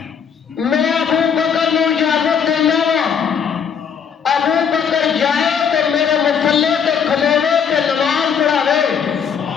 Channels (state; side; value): quieter; right; 7.1 dB